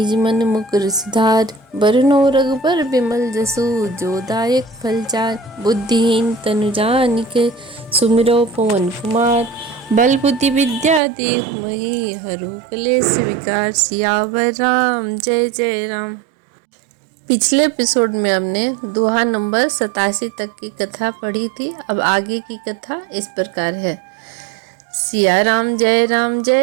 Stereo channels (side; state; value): left; drops out; at 11.0 s